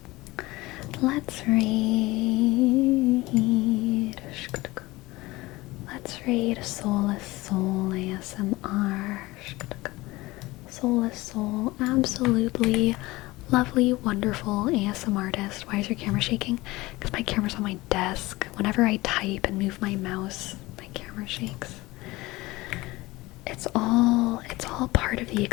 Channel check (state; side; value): quieter; right; 20.3 dB